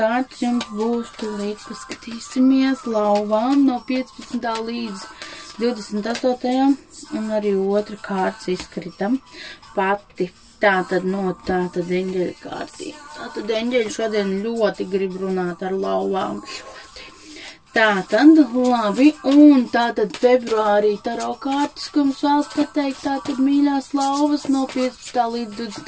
jums būs, tūlīt paskatīsimies, lauvām no 15. līdz 28. un arī otra kārts izskritam pati. Tātad no tātad eņģeļa kārtī. Tātad eņģeļi šodien ļoti grib runāt ar lauvām. Tātad, labi, un tātad februārī taro kārtas, ko mums vēlas pateikt, tātad mīļās lauvas no 15. līdz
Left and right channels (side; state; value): both; identical; correlation 1.00